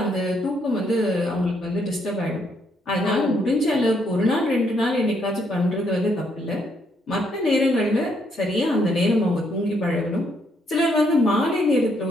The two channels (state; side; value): normal; both; correlation 0.73